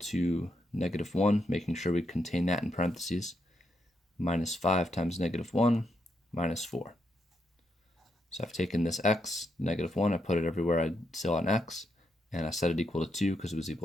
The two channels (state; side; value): normal; both; correlation 0.80